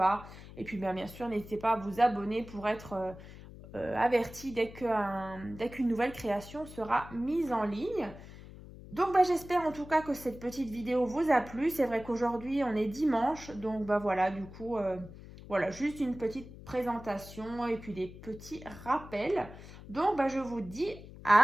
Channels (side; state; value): left; noise; hum, 16 dB below the sound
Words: Et puis bien sûr, n'hésitez pas à vous abonner pour être averti dès qu'une nouvelle création sera mise en ligne. Donc j'espère en tout cas que cette petite vidéo vous a plu. C'est vrai qu'aujourd'hui on est dimanche, donc voilà, du coup, voilà, juste une petite présentation et puis des petits rappels. Donc je vous dis